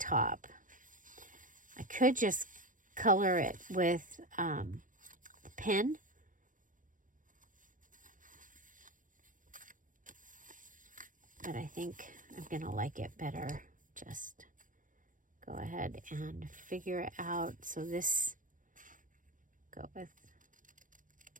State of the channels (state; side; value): late; left; 0.38 ms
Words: I could just color it with the pen. But I think I'm going to like it better. Just go ahead and figure it out. So this, go with